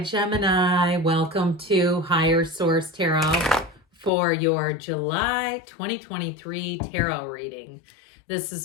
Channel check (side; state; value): right; drops out; at 4.1 s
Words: Welcome to Higher Source Tarot for your July 2023 tarot reading. This